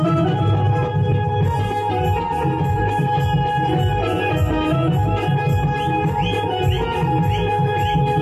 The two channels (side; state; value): both; identical; correlation 1.00